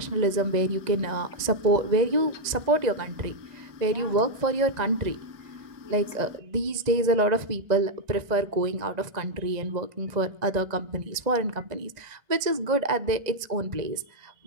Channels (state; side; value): late; left; 1.9 ms